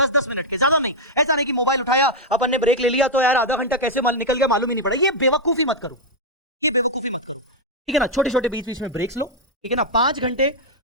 मिनट के, ज्यादा नहीं। ऐसा नहीं कि मोबाइल उठाया अपन ने ब्रेक ले लिया तो यार आधा घंटा कैसे निकल गया मालूम ही नहीं पड़ा, ये बेवकूफी मत करो, ठीक है ना। छोटे छोटे बीच बीच में ब्रेक्स लो, ठीक है ना। 5 घंटे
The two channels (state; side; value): normal; both; correlation -0.02